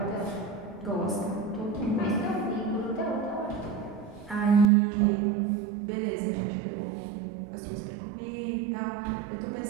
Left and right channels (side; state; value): left; drops out; at 4.7 s